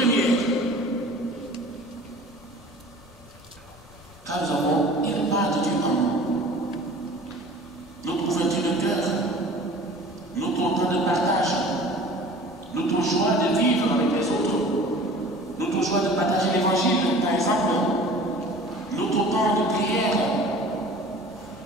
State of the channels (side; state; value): both; normal; correlation 0.44